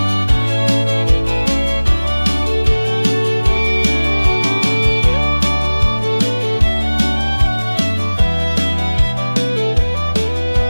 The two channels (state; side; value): inverted; both; correlation -1.00